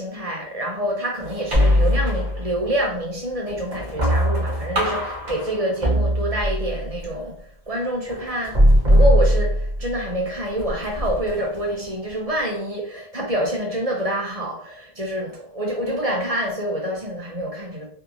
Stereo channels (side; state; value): left; late; 1.7 ms